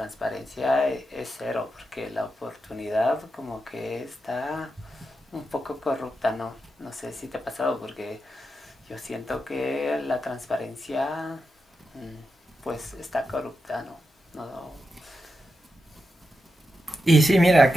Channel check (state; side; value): normal; both; correlation 0.88